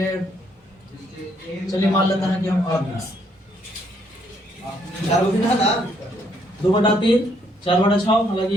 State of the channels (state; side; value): normal; both; correlation 0.70